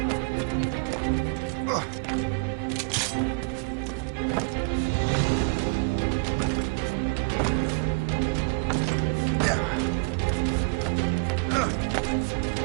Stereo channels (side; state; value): left; quieter; 33.5 dB